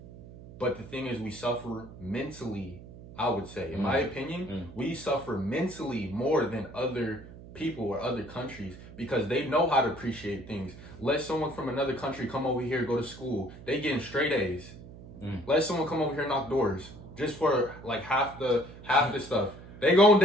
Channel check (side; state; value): right; noise; hum, 16 dB below the sound